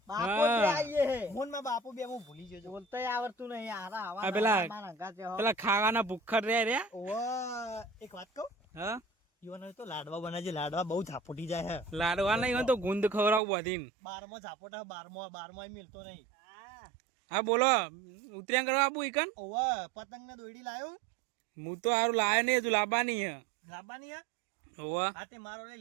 બાપો હા. તે આઈએ હે મોન માં બાપુ બે હું ભૂલી ગયો છું બોલતોય આવડતું નહીં આરા આવા આ પેલા- મારા અંગાતે હો. પેલા ખાવાના ભૂખર રે ઓવા એક વાત કહું હા યુવાનો તો લાડવા બનાવજે લાડવા બહુ ઝાપોટી જાય હે લાડવા નહીં હોય તો ગુંદ ખવડાવું બધીને 12મો ઝાપોટ હે 12મો મિલતો નહીં હા હા બોલો ઉતર્યા કરવા આપું ઈકન ઓવા પતંગ ને દોયડી લાયો હું તો હારું લાયો નહીં તું લાવવાની હે લાવવાની હે હોવા હા તે મારો લઈ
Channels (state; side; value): drops out; left; at 13.4 s